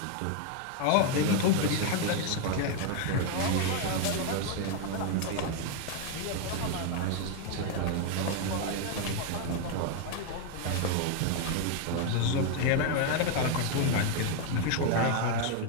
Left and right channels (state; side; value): different; both; correlation 0.01